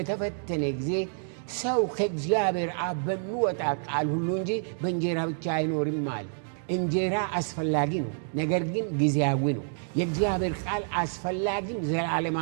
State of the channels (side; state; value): left; silent; digital silence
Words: ጊዜ ሰው ከእግዚአብሔር አብ በሚወጣ ቃል ሁሉ እንጂ በእንጀራ ብቻ አይኖርም አለ። እንጀራ አስፈላጊ ነው፣ ነገር ግን ጊዜያዊ ነው። የእግዚአብሔር ቃል አስፈላጊም